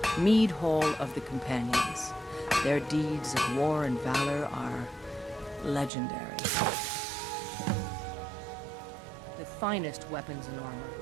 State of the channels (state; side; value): drops out; left; at 5.9 s